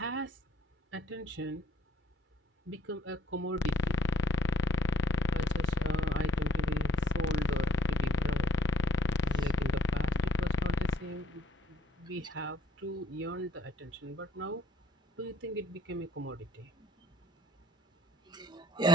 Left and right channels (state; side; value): normal; both; correlation 0.60